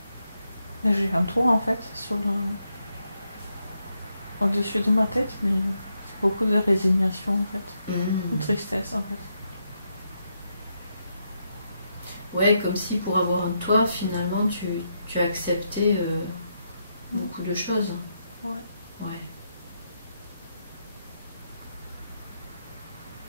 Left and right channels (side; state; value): both; inverted; correlation -0.81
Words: J'ai un toit, en fait, sur au-dessus de ma tête, mais c'est beaucoup de résignation en fait, de tristesse en fait. Ouais, comme si pour avoir un toit, finalement, tu as accepté beaucoup de choses. Ouais. Ouais.